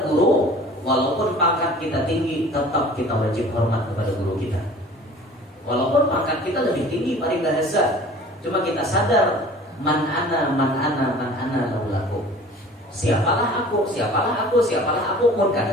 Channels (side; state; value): both; normal; correlation 0.46